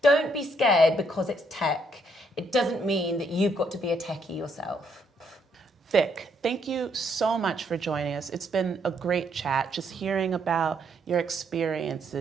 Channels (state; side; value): normal; both; correlation 0.72